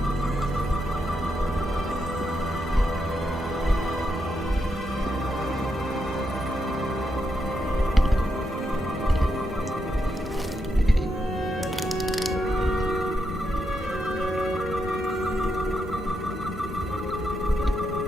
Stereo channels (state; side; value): normal; both; correlation 0.82